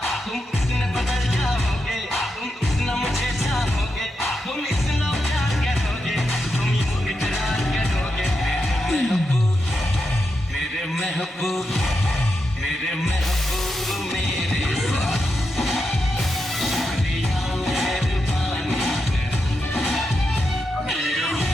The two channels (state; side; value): normal; both; correlation 0.86